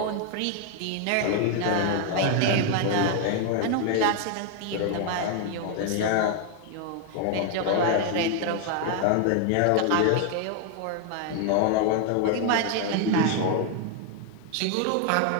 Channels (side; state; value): both; different; correlation 0.00